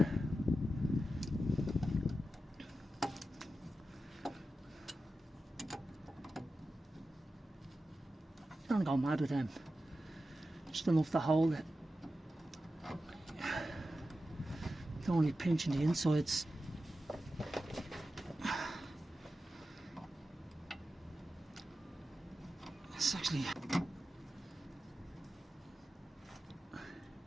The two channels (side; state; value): both; normal; correlation 0.92